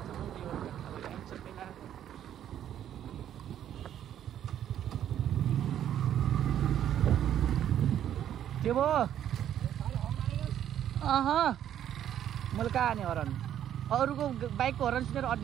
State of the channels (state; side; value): quieter; left; 10.6 dB